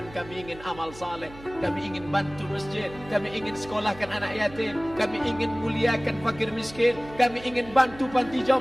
kami ingin amal saleh. Kami ingin bantu masjid. Kami ingin sekolahkan anak yatim. Kami ingin muliakan fakir miskin. Kami ingin bantu panti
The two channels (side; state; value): right; noise; hum, 18 dB below the sound